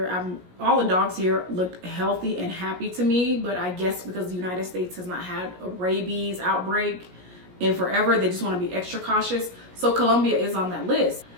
all the dogs here looked healthy and happy to me. But I guess because the United States has not had a rabies outbreak in forever, they just want to be extra cautious. So Colombia is on that list.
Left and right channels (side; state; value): left; late; 17 ms